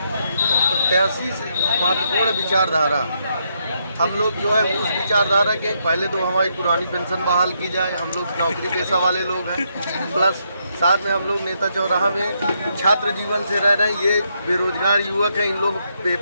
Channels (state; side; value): inverted; both; correlation -0.77